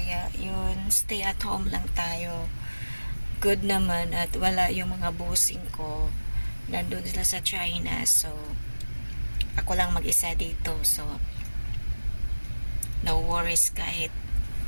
yun, stay at home lang tayo. Good naman at wala yung mga busing ko. Nandun sila sa China, so ako lang mag-isa dito. So no worries kahit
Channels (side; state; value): both; inverted; correlation -1.00